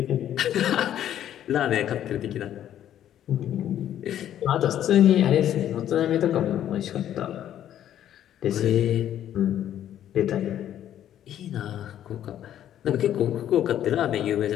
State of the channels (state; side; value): quieter; right; 11.1 dB